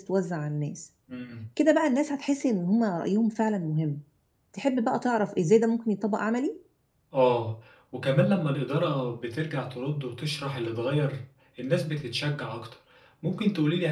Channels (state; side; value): identical; both; correlation 1.00